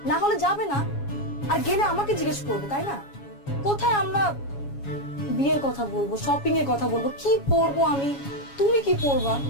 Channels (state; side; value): late; right; 7.2 ms